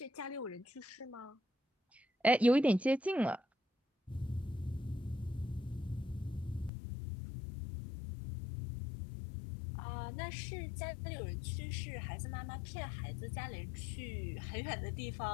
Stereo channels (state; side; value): drops out; right; at 6.7 s